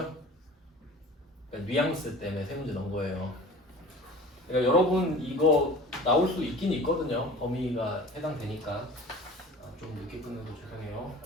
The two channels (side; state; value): both; normal; correlation 0.41